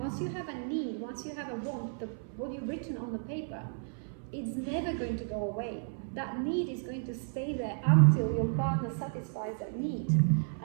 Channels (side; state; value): left; silent; 56 dB below the other